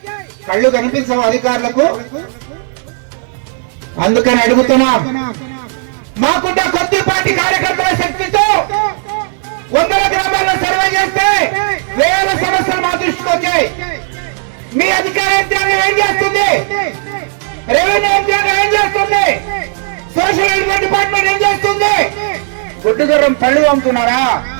కళ్ళు కనిపించవు అధికారులకు. అందుకని అడుగుతున్నాం, మాకున్న కొద్దిపాటి కార్యకర్తల శక్తితో 100 గ్రామాల్లో సర్వే చేస్తే 1000 సమస్యలు మా దృష్టికి వచ్చాయి. మీ అధికార యంత్రాంగం ఏం చేస్తుంది? రెవెన్యూ యంత్రాంగం ఏం చేస్తుంది? సోషల్ వెల్ఫేర్ డిపార్ట్మెంట్ ఏం చేస్తుంది? గుడ్డుగుర్రం పళ్ళు అమ్ముతున్నారా?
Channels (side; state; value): left; silent; 61 dB below the other